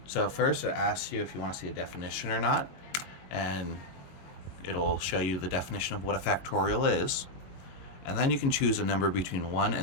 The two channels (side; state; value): right; late; 22 ms